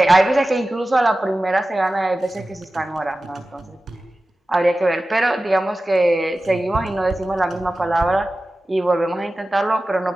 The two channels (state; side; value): normal; both; correlation 0.95